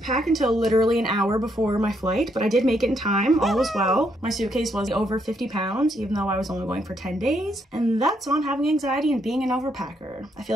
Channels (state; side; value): normal; both; correlation 0.75